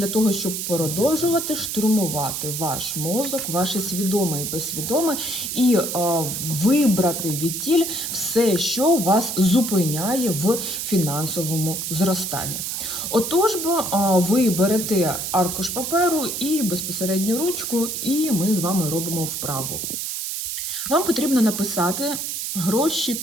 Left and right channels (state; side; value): noise; right; hiss, 4 dB below the sound